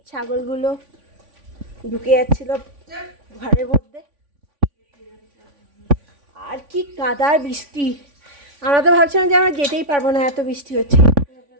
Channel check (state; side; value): late; left; 3.5 ms